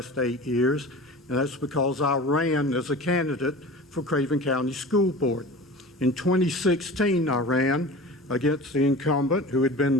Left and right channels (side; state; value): both; normal; correlation 0.36